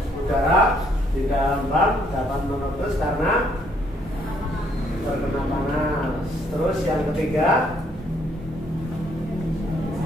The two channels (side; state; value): both; normal; correlation 0.68